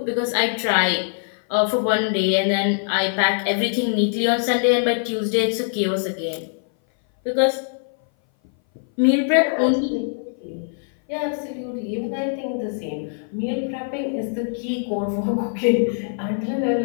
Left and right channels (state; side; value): silent; right; 59 dB below the other